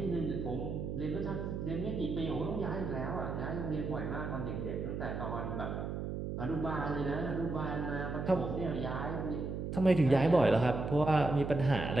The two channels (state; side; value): noise; right; hum, 4 dB below the sound